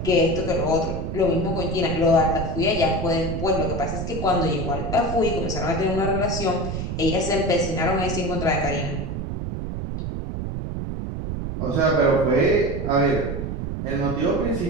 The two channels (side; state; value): right; noise; rumble, 4 dB below the sound